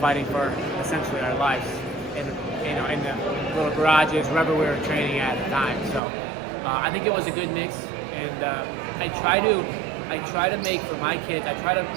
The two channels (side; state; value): left; drops out; at 6.0 s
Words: for essentially our lives in the little garages, wherever we were training at the time. So I think it was a good mix, and I try to make for my kids.